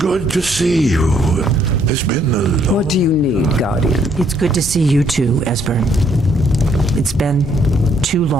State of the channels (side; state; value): both; normal; correlation 0.68